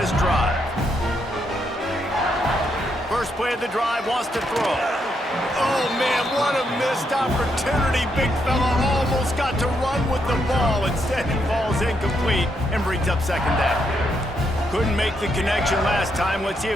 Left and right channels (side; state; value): both; normal; correlation 0.78